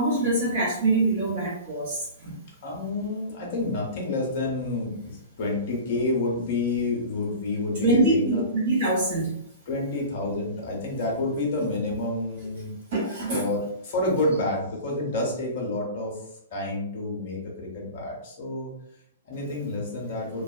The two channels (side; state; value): both; inverted; correlation -0.35